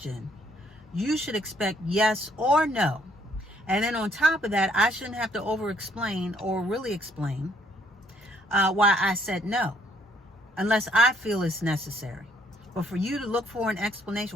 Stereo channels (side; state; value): both; normal; correlation 0.66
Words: you should expect yes or no. And then on top of that, I shouldn't have to over explain or really explain why I said no, unless I feel it's necessary. But for you to look for an